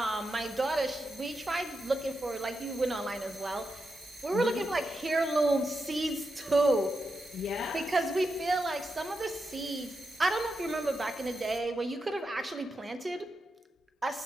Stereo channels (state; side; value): normal; both; correlation 0.87